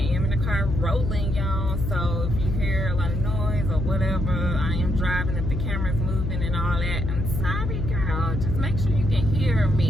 am in the car rolling, y'all, so if you hear a lot of noise or whatever, I am driving. If the camera's moving and all that, I'm sorry, girl, just make sure you can hear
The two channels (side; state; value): left; noise; hum, 2 dB below the sound